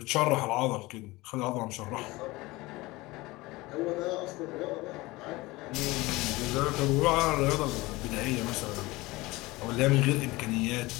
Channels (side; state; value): right; quieter; 21.0 dB